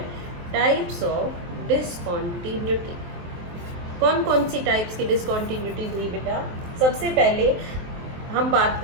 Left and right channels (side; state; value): left; late; 23 ms